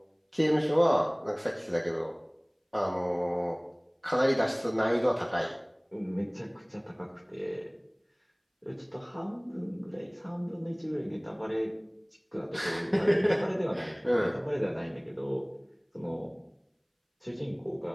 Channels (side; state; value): both; identical; correlation 1.00